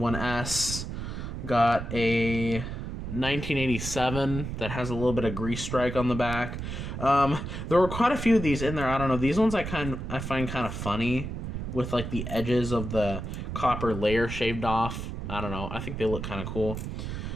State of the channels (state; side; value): noise; right; rumble, 6 dB below the sound